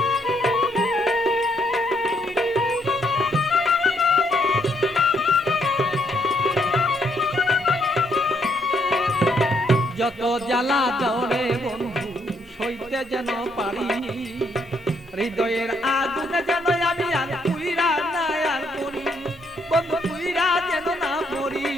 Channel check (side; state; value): both; normal; correlation 0.72